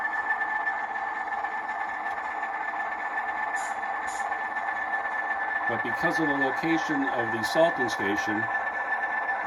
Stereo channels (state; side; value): identical; both; correlation 1.00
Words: But because of the location of the salting station,